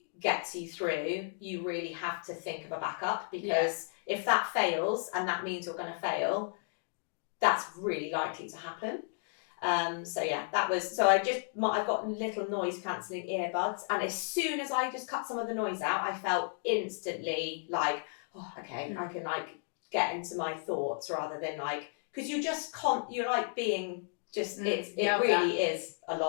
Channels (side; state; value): right; silent; 55 dB below the other